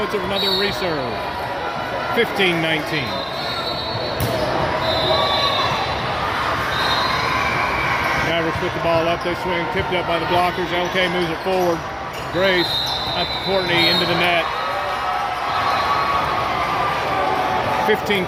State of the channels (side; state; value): both; identical; correlation 1.00